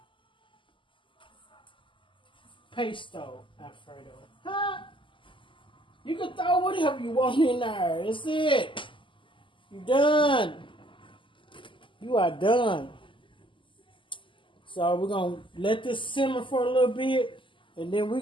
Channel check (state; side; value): late; right; 0.25 ms